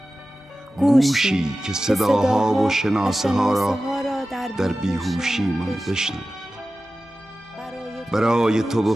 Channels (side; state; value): both; normal; correlation 0.95